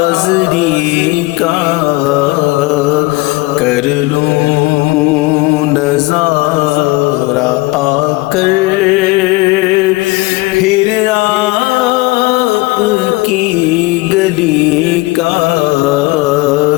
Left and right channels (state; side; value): quieter; right; 22.2 dB